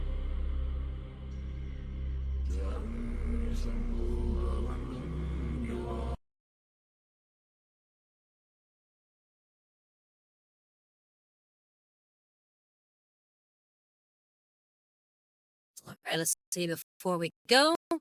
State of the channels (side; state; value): both; identical; correlation 1.00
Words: All right, let's see before we go.